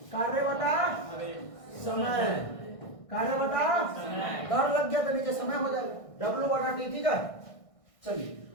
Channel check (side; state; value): right; late; 1.6 ms